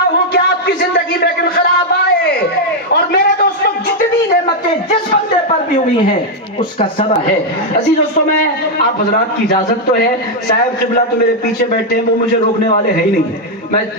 ہوں کہ آپ کی زندگی میں انقلاب آئے، اور میرے دوستوں جتنی نعمتیں جس بندے پر بھی ہوئی ہیں اس کا سبب ہے۔ عزیز دوستوں میں آپ حضرات کی اجازت تو ہے، صاحب قبلہ تو میرے پیچھے بیٹھے ہیں، وہ مجھے روکنے والے ہیں ہی نہیں، میں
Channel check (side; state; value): both; normal; correlation 0.00